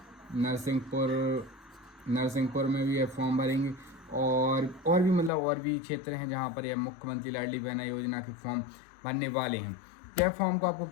नरसिंहपुर में भी ये फॉर्म भरेंगे, और भी मतलब और भी क्षेत्र हैं जहाँ पर यह मुख्यमंत्री लाडली बहना योजना के फॉर्म भरने वाले हैं। यह फॉर्म को आपको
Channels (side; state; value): right; drops out; at 5.3 s